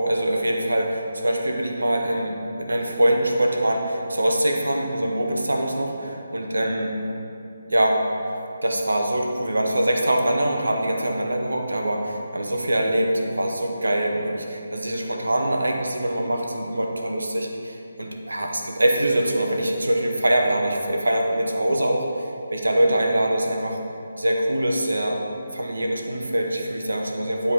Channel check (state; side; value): inverted; both; correlation -0.92